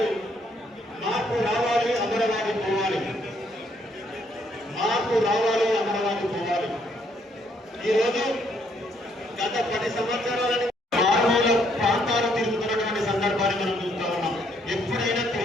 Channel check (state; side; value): normal; both; correlation 0.70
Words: మార్పు రావాలి, అమరవాది పోవాలి. మార్పు రావాలి, అమరవాది పోవాలి. ఈరోజు గత 10 సంవత్సరాల మారుమూల ప్రాంతాలు తిరుగుతున్నటువంటి సందర్భాన్ని మనం చూస్తా ఉన్నాం. ఎప్పుడైనా